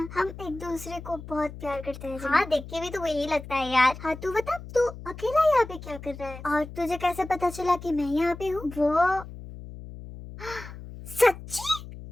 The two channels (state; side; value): noise; left; hum, 13 dB below the sound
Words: हम एक दूसरे को बहुत प्यार करते हैं। हाँ, देख के भी तो वही लगता है यार। हाँ, तू बता, तू अकेला यहाँ पे क्या कर रहा है? और तुझे कैसे पता चला कि मैं यहाँ पे हूँ? वो सच्ची?